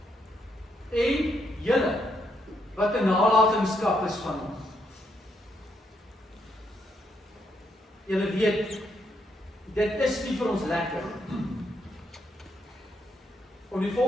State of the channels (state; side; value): normal; both; correlation 0.77